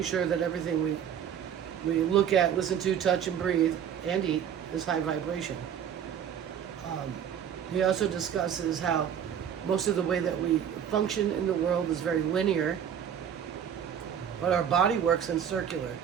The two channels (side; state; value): left; quieter; 8.8 dB